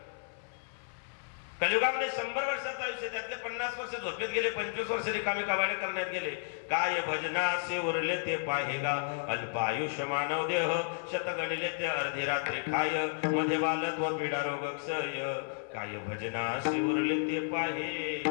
कलियुगामध्ये 100 वर्षाचं आयुष्य. त्यातले 50 वर्ष झोपेत गेले. 25 वर्ष रिकामी काबाडे करण्यात गेले. काय भजनासे उरले ते पाहेगा. अल्पायुष्य मानव देह शत गणिले ते अर्धी रात्री खाय. मध्ये बालत्व पीडा रोग क्षय. काय भजनासे उरले ते पाहेगा.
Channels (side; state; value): right; silent; 56 dB below the other